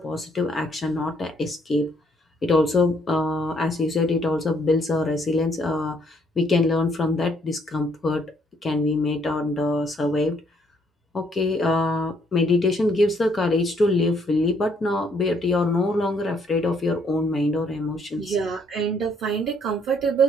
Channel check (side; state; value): both; normal; correlation 0.68